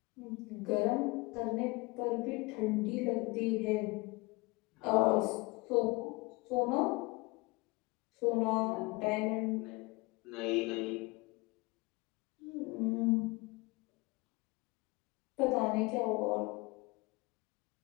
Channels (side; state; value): right; quieter; 24.8 dB